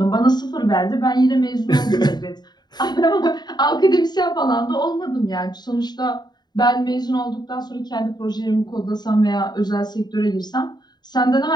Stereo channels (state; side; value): late; right; 0.20 ms